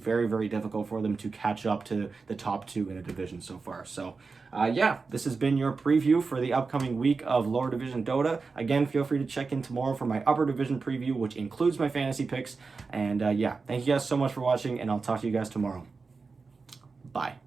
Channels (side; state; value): left; quieter; 4.5 dB